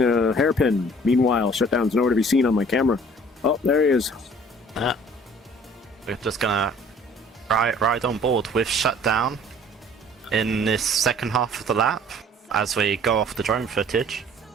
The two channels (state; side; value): normal; both; correlation 0.53